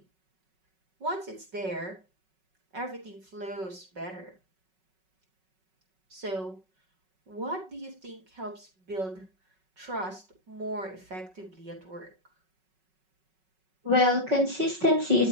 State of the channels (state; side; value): late; left; 5.4 ms